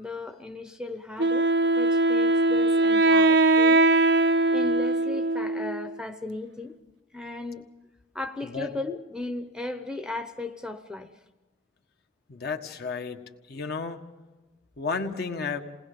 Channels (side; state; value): both; normal; correlation 0.14